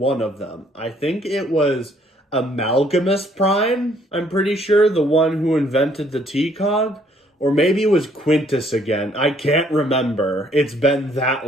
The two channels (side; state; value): both; normal; correlation 0.64